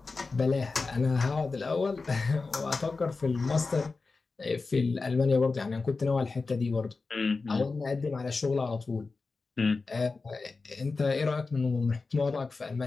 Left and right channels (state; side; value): quieter; right; 4.0 dB